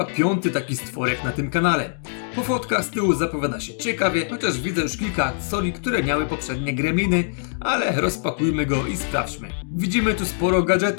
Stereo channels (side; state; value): right; silent; digital silence